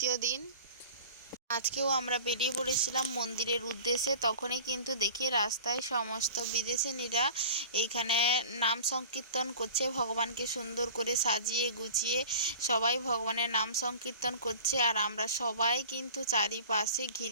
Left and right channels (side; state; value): both; inverted; correlation -0.40